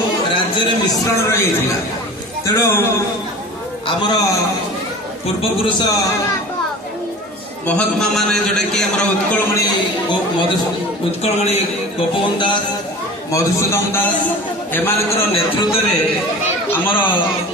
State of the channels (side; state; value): both; normal; correlation 0.38